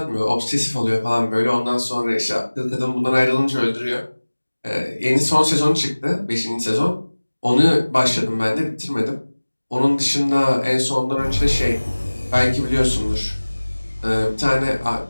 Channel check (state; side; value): inverted; both; correlation -1.00